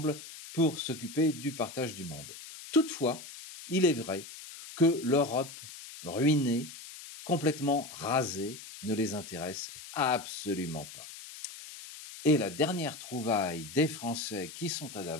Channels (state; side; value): noise; left; hiss, 14 dB below the sound